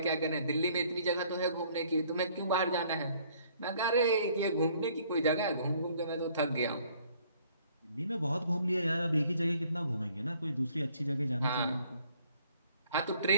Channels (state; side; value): inverted; both; correlation -0.61